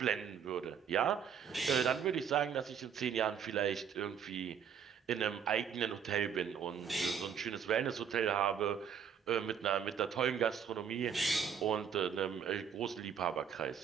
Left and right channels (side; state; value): left; quieter; 7.4 dB